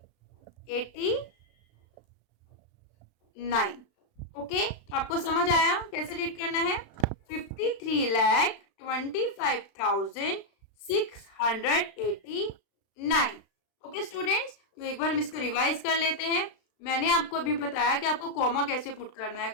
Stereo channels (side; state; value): right; late; 36 ms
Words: ओके, तो आपको समझ आया कैसे रीड करना है, 53,25,689। ओके स्टूडेंट्स, तो एक बार हम इसको रिवाइज कर लेते हैं। मैंने आपको अभी बताया कि आपको कॉमा कैसे पुट करना है।